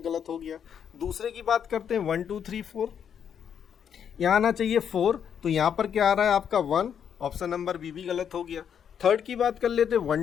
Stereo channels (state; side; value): quieter; right; 8.2 dB